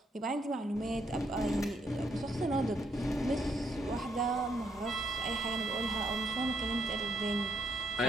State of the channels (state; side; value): normal; both; correlation 0.74